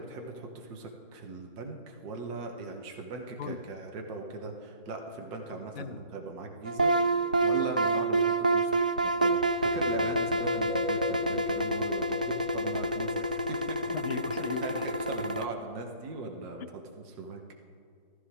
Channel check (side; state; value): both; inverted; correlation -0.55